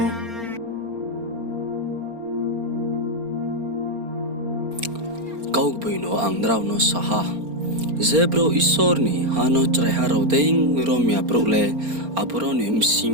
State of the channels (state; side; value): late; left; 4.3 ms